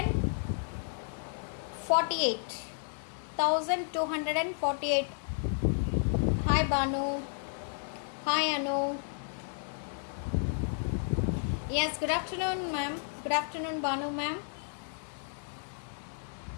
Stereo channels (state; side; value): silent; right; digital silence